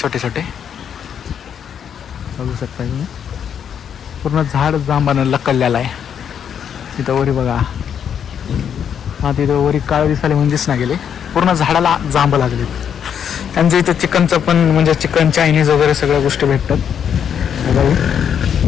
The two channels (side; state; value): right; quieter; 8.3 dB